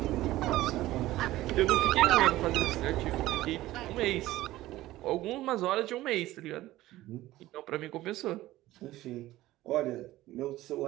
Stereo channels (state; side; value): quieter; left; 16.2 dB